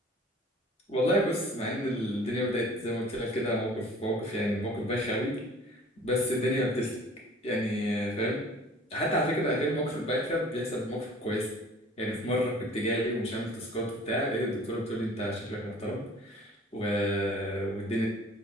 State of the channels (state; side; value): normal; both; correlation 0.49